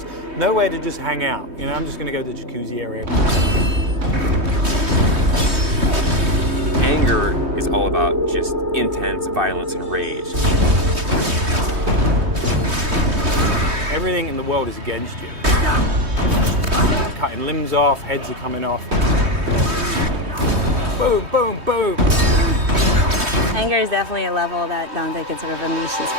nowhere to just hang out. You know, I'm just going to go to the jacuzzi area. Anger is all about just intense violence and rage. Everything in the world is against you. Cutting limbs off, heads are coming off. Boom, boom, boom. Anger is definitely a level that Dante can sort of unleash his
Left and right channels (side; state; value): left; late; 3.2 ms